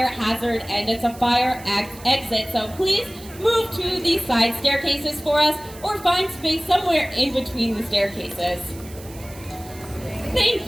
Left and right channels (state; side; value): noise; right; hiss, 19 dB below the sound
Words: hazard, and it's a fire exit, so please move to the side staircases for us, or find space somewhere in between the staircases. Thank